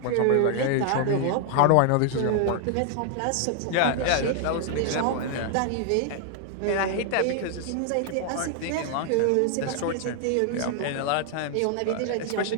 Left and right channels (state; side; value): different; both; correlation 0.00